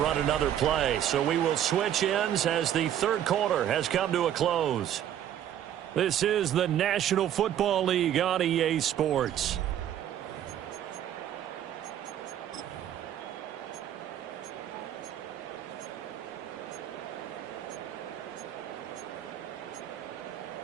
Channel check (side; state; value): left; quieter; 10.7 dB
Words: another play. So we will switch ends as the third quarter has come to a close. This is the National Football League on EA Sports.